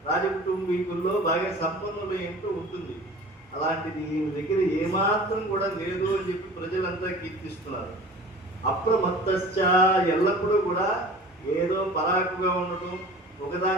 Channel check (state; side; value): normal; both; correlation 0.41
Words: రాజకుటుంబీకుల్లో బాగా సంపన్నులు ఏంటో ఉంటుంది. అలాంటిది ఈయన దగ్గర ఏమాత్రం కూడా లేదు అని చెప్పి ప్రజలంతా కీర్తిస్తున్నారు. అప్రమత్తశ్చ, ఎల్లప్పుడూ కూడా ఏదో పరాకుగా ఉండటం,